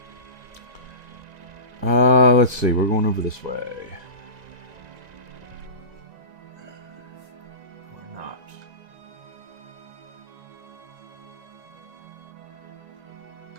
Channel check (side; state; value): left; late; 1.9 ms